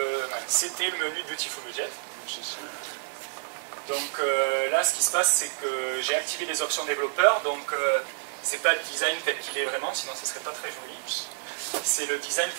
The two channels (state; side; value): silent; left; digital silence